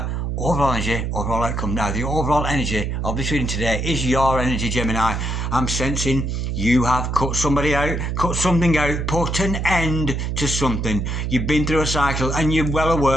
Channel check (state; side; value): noise; right; hum, 1 dB below the sound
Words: overall energy, overall outcome. Now, the overall energy of this reading today is your energy, Gemini. I'm sensing you have cut somebody out, cut something out, put an end to something. You've been through a cycle and you're well